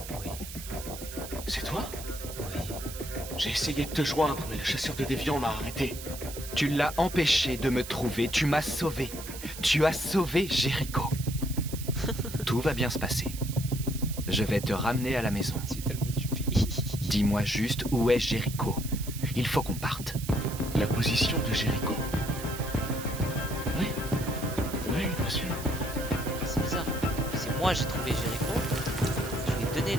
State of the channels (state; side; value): noise; right; hiss, 11 dB below the sound